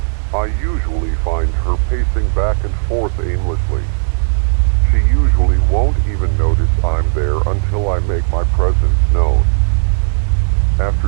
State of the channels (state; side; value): silent; left; digital silence